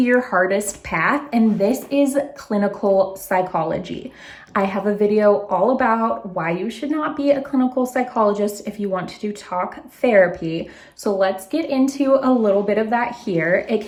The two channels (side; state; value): both; identical; correlation 1.00